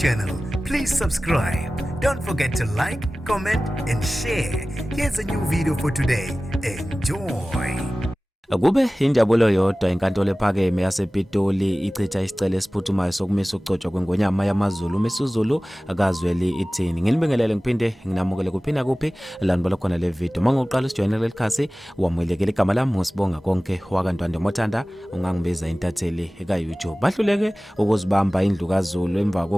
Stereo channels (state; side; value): normal; both; correlation 0.97